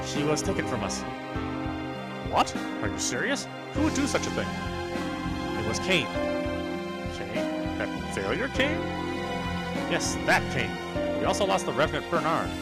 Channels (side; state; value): both; identical; correlation 1.00